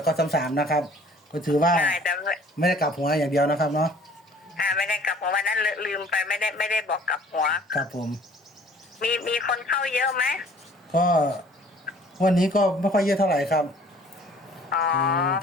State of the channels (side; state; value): both; normal; correlation 0.53